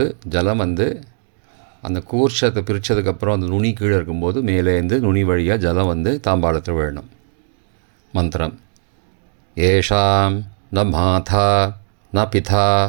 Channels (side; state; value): left; silent; 66 dB below the other